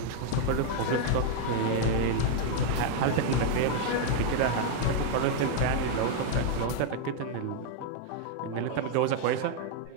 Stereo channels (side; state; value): both; different; correlation 0.00